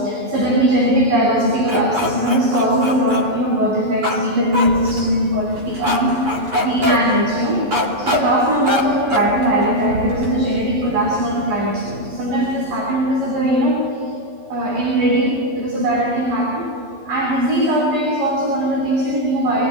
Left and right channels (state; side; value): late; left; 11 ms